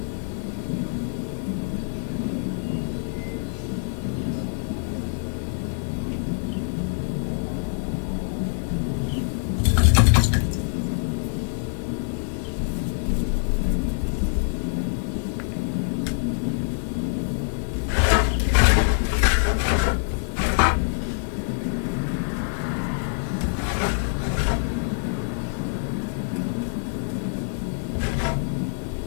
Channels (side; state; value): right; silent; digital silence